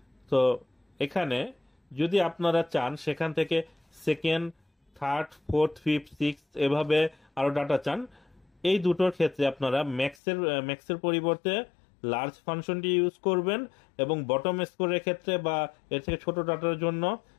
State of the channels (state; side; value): drops out; right; at 10.2 s